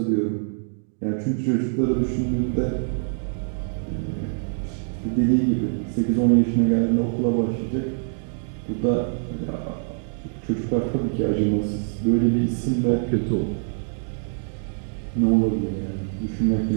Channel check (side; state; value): left; silent; digital silence